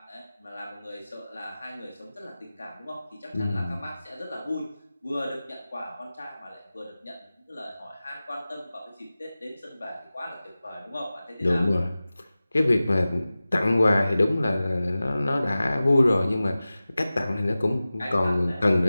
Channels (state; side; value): inverted; both; correlation -0.96